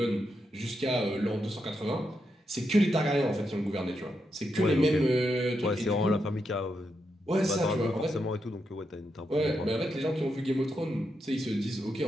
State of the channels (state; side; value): normal; both; correlation 0.83